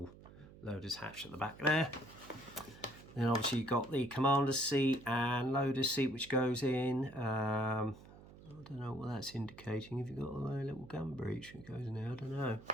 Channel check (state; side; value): noise; right; hum, 19 dB below the sound